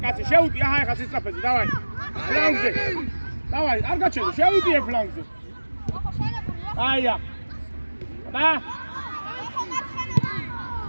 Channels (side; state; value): both; inverted; correlation -1.00